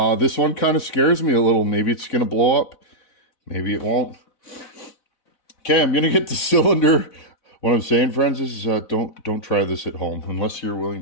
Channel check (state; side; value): late; right; 4.0 ms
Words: This one kind of scares me a little. Maybe it's going to blow up. Maybe it won't. Okay, I'm going to get the cylinder. What I'm saying, friends, is don't try this at home unless you're willing